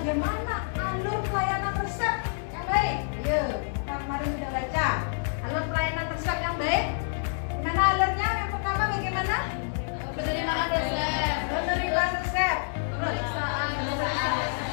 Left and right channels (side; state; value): right; silent; digital silence